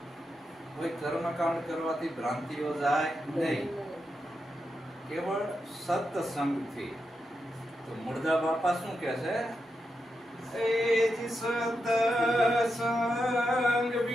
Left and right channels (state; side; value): normal; both; correlation 0.86